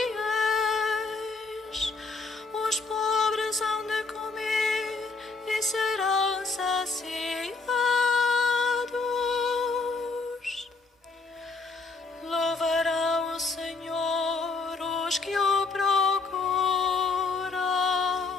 Os pobres hão de comer e serão saciados. Louvarão o Senhor os que o procuram.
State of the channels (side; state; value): right; quieter; 4.1 dB